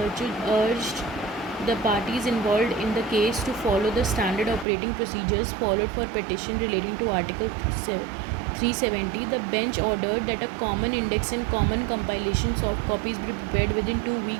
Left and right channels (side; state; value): left; drops out; at 4.7 s